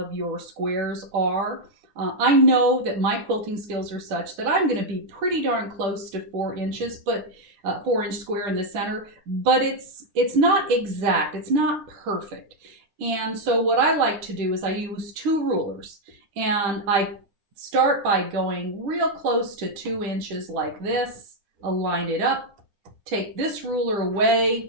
your squares are. I know that my quilting skills are such that I'm going to be pretty darn close to 4 inches, but 4-inch square in the center, but it's not exact, it's not perfect. And so what I like to do is I use 2 rulers, and I start by going real close to 2 inches like this, align it up, take this ruler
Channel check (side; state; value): left; late; 9.9 ms